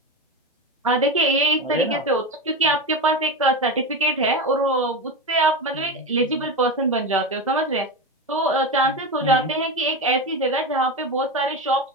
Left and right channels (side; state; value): both; normal; correlation 0.19